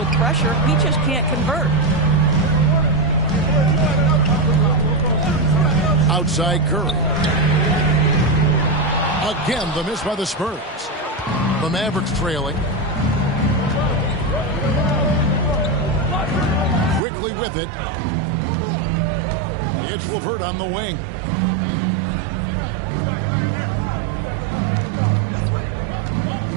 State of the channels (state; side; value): drops out; left; at 17.0 s